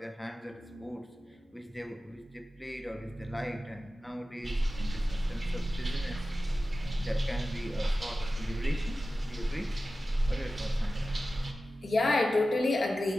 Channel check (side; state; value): both; normal; correlation 0.94